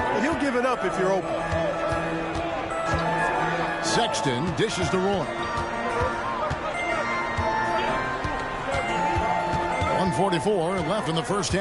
but he'll give it up if you're open. Sexton dishes to Roy. 1:44 left in the first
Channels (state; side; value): identical; both; correlation 1.00